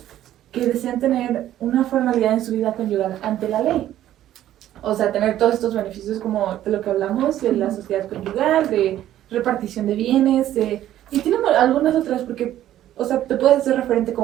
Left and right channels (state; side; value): quieter; left; 12.6 dB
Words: que desean tener una formalidad en su vida conyugal ante la ley. O sea, tener todos estos beneficios como de lo que hablamos, de la sociedad conyugal, de repartición de bienes, y tiene algunas otras porque, o sea, te puedes hacer referente